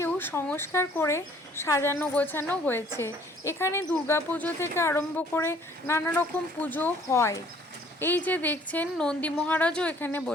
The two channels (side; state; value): both; normal; correlation 0.58